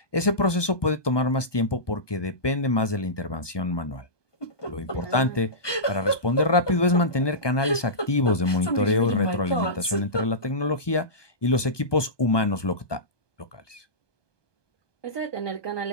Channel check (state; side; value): late; right; 1.2 ms